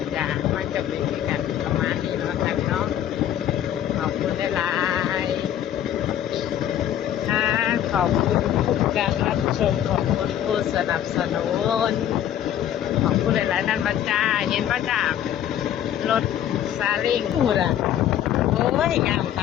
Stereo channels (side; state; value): right; quieter; 10.9 dB